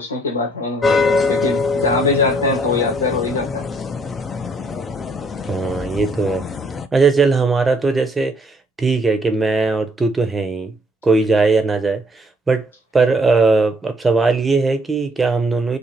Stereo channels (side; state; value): both; normal; correlation 0.66